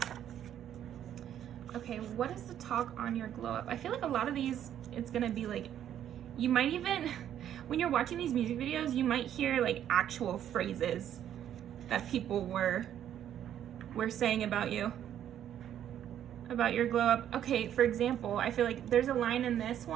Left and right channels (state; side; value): quieter; left; 10.4 dB